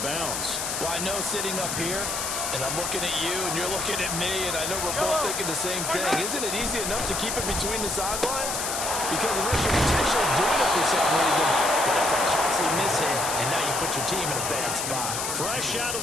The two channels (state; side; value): noise; left; hiss, 2 dB below the sound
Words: bounds. Well, I know sitting up here, and I'm looking at you, and you're looking at me, and I know we're both thinking the same thing. Isn't it easy enough to keep it between the sidelines? Because unless you're intentionally doing it for some reason, but that's a costly mishit, and now you put your team in a bad spot. Fresh out of